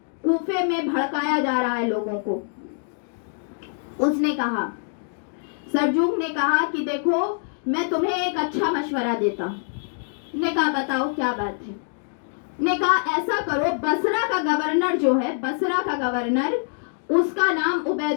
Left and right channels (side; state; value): right; silent; 62 dB below the other